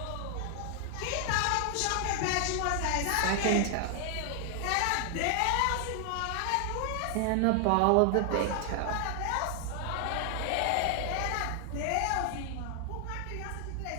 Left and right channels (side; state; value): both; different; correlation 0.00